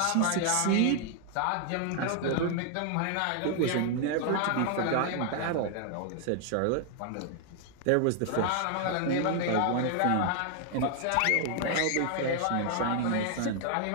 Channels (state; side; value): different; both; correlation 0.00